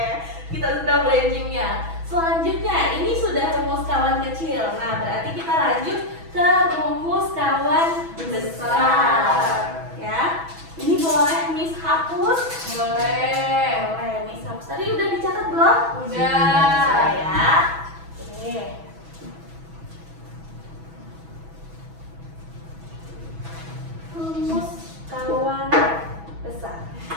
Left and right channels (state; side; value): late; left; 6.1 ms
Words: kita sudah brain gym-nya. Selanjutnya, ini sudah rumus kawan kecil. Nah, berarti kita lanjut ke rumus kawan besar. Ya, ini boleh Miss hapus? Boleh. Boleh Miss hapus. Tadi udah dicatat belum? Udah. Ya. Oke. Rumus kawan besar.